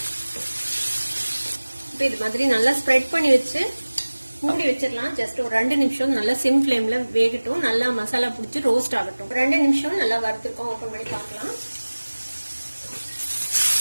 இப்போ இது மாதிரி நல்லா ஸ்ப்ரெட் பண்ணி வச்சு மூடி வச்சிடலாம். ஜஸ்ட் ஒரு 2 நிமிஷம் நல்லா சிம் ஃபிளேம்ல வேகட்டும். நல்லா மசாலா பிடிச்சி ரோஸ்ட் ஆகட்டும். 2 நிமிஷம் நல்லா வறுத்துருக்கோம். ஓப்பன் பண்ணி பார்க்கலாம்.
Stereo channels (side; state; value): both; inverted; correlation -1.00